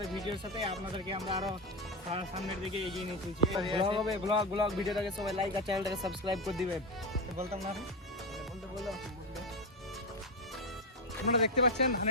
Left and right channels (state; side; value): normal; both; correlation 0.13